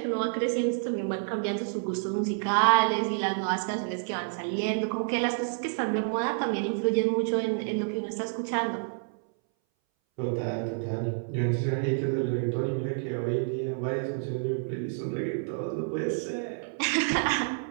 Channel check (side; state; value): left; silent; 59 dB below the other